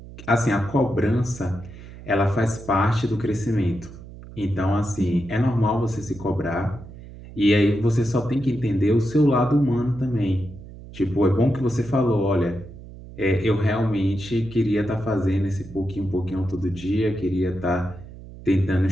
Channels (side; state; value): right; noise; hum, 16 dB below the sound